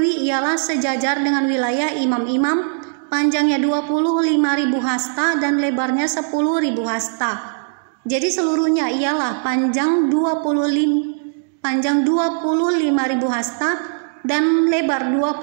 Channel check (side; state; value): left; silent; digital silence